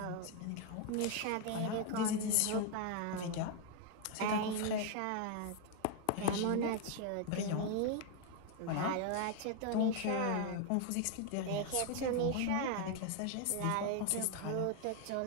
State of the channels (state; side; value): different; both; correlation 0.01